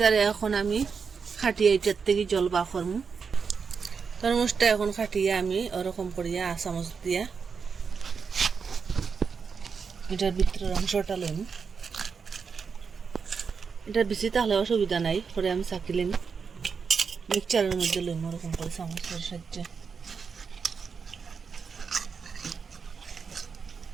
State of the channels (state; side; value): quieter; left; 5.7 dB